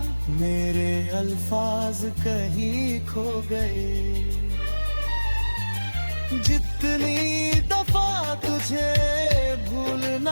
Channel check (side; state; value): both; inverted; correlation -1.00